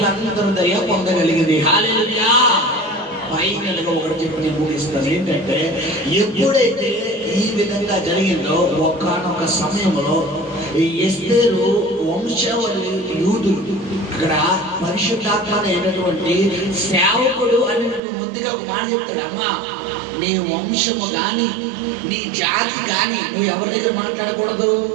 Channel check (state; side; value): drops out; left; at 18.0 s